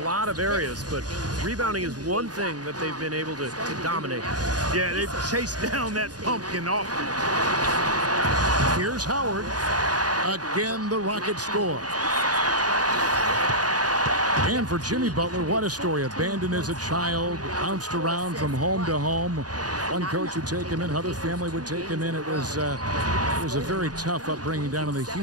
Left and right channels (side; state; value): left; late; 0.68 ms